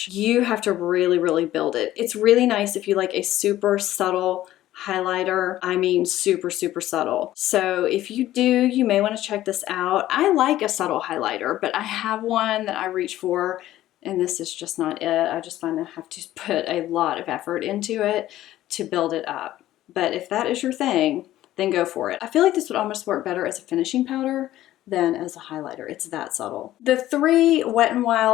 you have to really build it. It's really nice if you like a super subtle highlighter. I mean super subtle. So if you do, you may want to check this out. I like a subtle highlighter, but I have one that I reach for and this is just not it. I just find I have to put a lot of effort into it to build it up. But if that is your thing, then go for it. I feel like this would almost work better as a finishing powder than as a highlighter. It's that subtle. The 3 Wet n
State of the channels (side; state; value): right; quieter; 14.2 dB